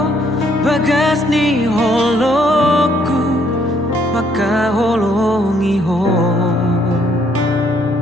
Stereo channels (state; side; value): normal; both; correlation 0.68